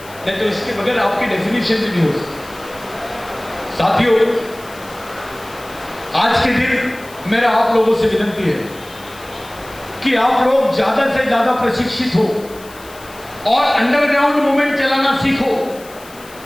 नहीं तो इसके बगैर आपकी डेफिनेशन भी नहीं हो सकती। साथियों, आज के दिन मेरा आप लोगों से विनती है कि आप लोग ज्यादा से ज्यादा प्रशिक्षित हो और अंडरग्राउंड मूवमेंट चलाना सीखो।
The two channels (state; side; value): noise; left; hiss, 21 dB below the sound